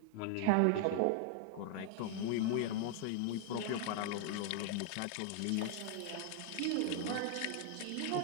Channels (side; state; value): both; different; correlation 0.00